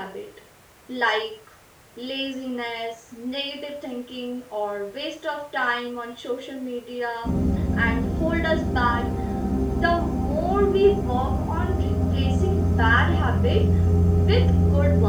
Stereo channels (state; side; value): identical; both; correlation 1.00